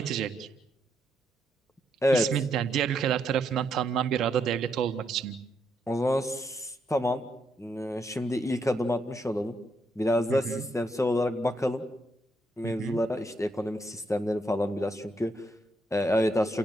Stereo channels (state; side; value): normal; both; correlation 0.77